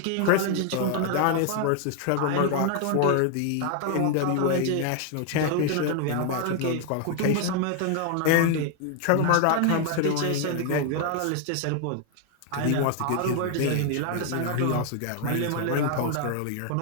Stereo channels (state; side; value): different; both; correlation 0.00